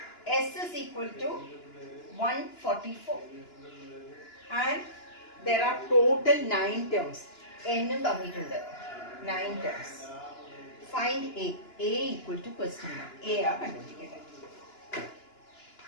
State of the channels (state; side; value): late; right; 2.9 ms